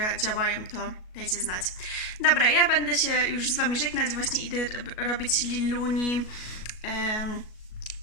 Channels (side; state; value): right; late; 37 ms